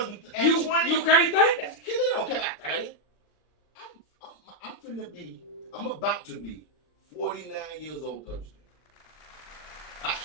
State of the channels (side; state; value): right; late; 39 ms